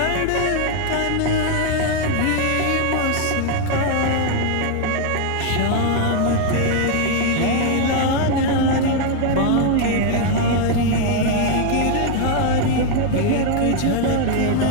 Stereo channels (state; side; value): different; both; correlation 0.00